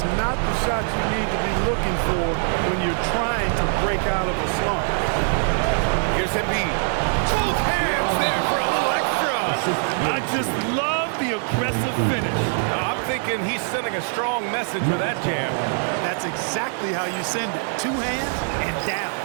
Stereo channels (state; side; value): silent; left; 56 dB below the other